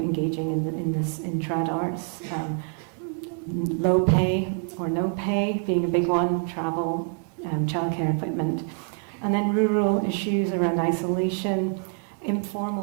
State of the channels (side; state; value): left; quieter; 38.1 dB